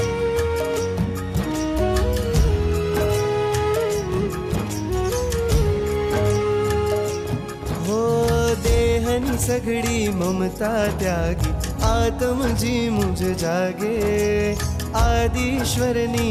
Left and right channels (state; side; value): identical; both; correlation 1.00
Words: हो देहनी सघड़ी ममता त्यागी आत्मजी मुझ जागे आदिश्वरनी